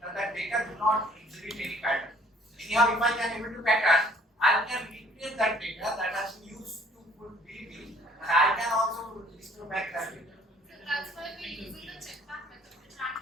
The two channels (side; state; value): both; normal; correlation 0.57